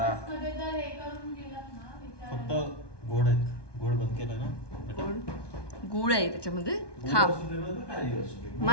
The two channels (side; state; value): right; late; 1.2 ms